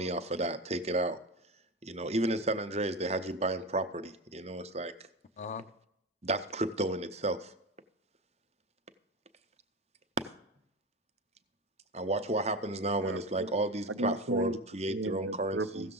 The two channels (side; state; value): both; normal; correlation 0.24